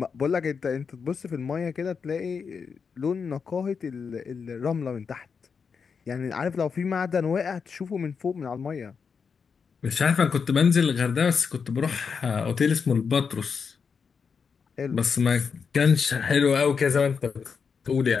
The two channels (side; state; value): right; quieter; 5.9 dB